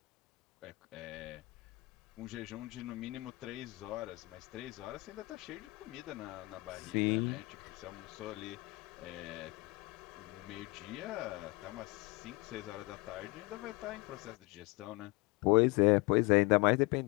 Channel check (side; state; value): right; quieter; 24.3 dB